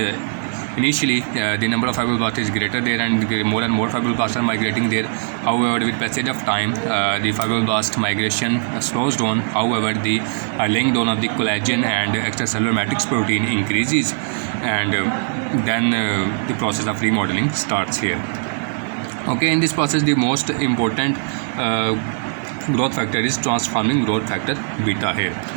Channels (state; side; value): silent; left; digital silence